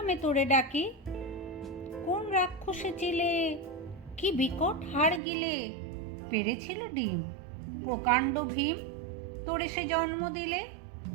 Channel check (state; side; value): drops out; left; at 5.2 s